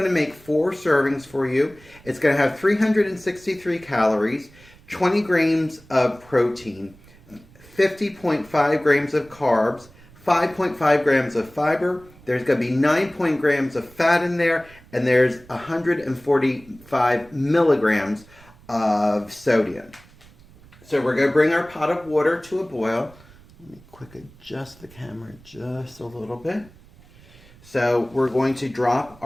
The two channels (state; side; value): noise; right; rumble, 25 dB below the sound